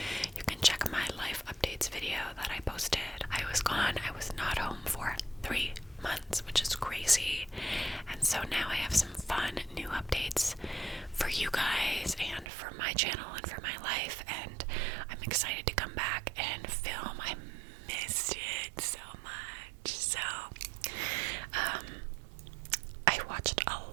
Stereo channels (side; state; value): left; drops out; at 12.5 s